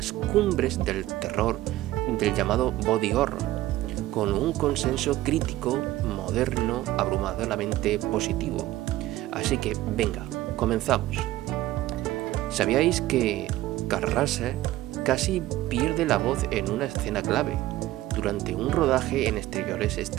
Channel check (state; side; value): quieter; left; 15.8 dB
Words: cumbres del terror del llamado body horror, con un consenso crítico moderno abrumadoramente positivo. Así que venga, comenzamos. ¿Sabíais que Kurt Russell casi pierde la voz en una escena clave durante un rodaje en exteriores